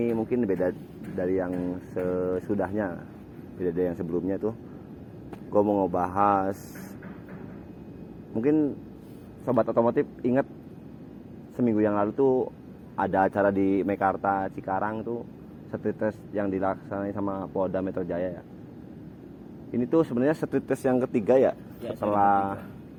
mungkin beda dari yang sesudahnya, beda dari yang sebelumnya tuh. Gua mau ngebahas, mungkin sobat otomotif ingat seminggu yang lalu tuh ada acara di Mekarta Cikarang tuh, street test yang dilaksanain sama Polda Metro Jaya ya. Ini tuh sebenarnya street test yang ketiga ya, setelah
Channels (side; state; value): both; identical; correlation 1.00